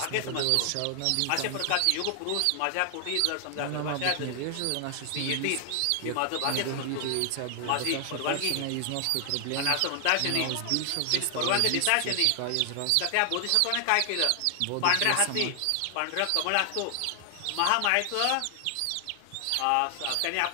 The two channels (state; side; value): different; both; correlation 0.00